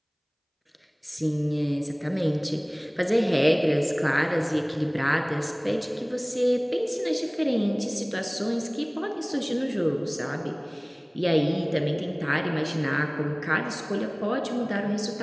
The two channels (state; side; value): identical; both; correlation 1.00